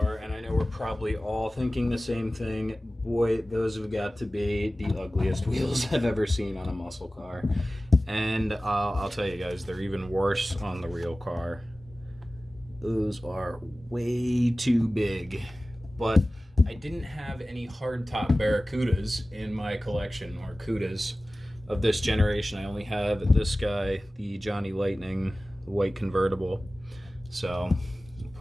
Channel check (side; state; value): both; normal; correlation 0.97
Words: and I know we're probably all thinking the same thing, boy, those have got to be the ugliest wheels I've ever seen on a muscle car. And I'll tell you guys, they're even worse on the real car. Those are way too big. But I didn't have any hardtop Barracudas in my collection, or Cudas, of this generation. I only have this guy, the Johnny Lightning, the white convertible. So,